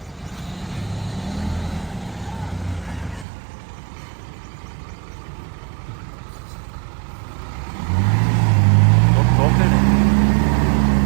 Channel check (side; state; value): left; drops out; at 3.2 s